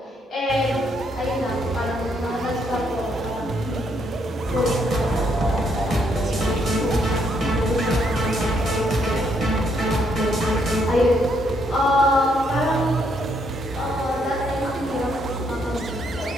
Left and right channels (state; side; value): normal; both; correlation 0.73